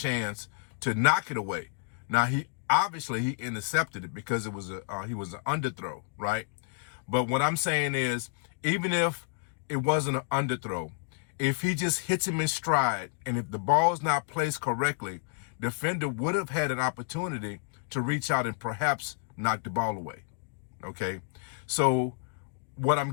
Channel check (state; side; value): silent; right; 58 dB below the other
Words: to knock it away. Now, he intercepted it because he was an underthrow, right? But what I'm saying is, even if it wasn't an underthrow, if he just hits him in stride, and if the ball is not placed correctly, defender would have had an opportunity to reach out and perhaps knock the ball away, okay? So what